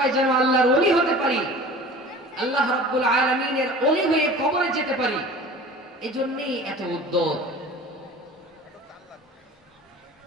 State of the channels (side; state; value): both; normal; correlation 0.41